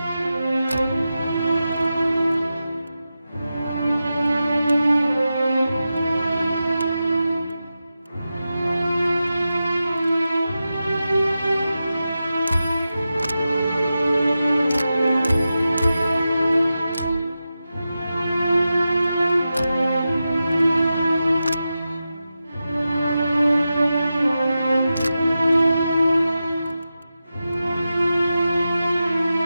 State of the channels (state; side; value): inverted; both; correlation -0.92